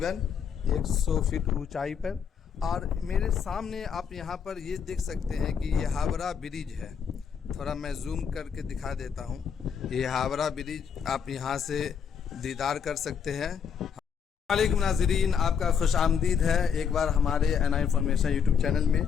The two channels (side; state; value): right; quieter; 7.2 dB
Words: 100 फीट ऊंचाई पर। और मेरे सामने आप यहाँ पर ये देख सकते हैं कि ये हावड़ा ब्रिज है। थोड़ा मैं जूम करके दिखा देता हूँ। ये हावड़ा ब्रिज आप यहाँ से दीदार कर सकते हैं। वालेकुम नाज़रीन, आपका खुश आमदीद है एक बार हमारे एनआई इन्फॉर्मेशन यूट्यूब चैनल में।